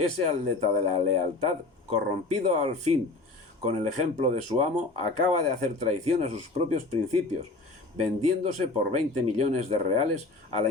atleta de la lealtad, corrompido al fin con el ejemplo de su amo, acaba de hacer traición a sus propios principios, vendiéndose por 20 millones de reales a la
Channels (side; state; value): right; quieter; 3.3 dB